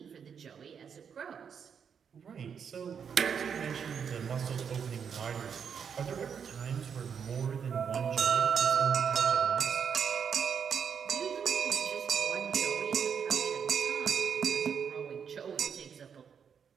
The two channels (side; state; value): left; quieter; 7.1 dB